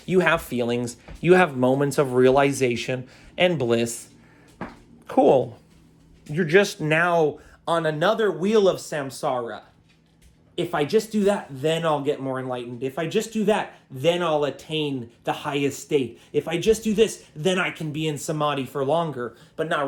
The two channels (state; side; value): identical; both; correlation 1.00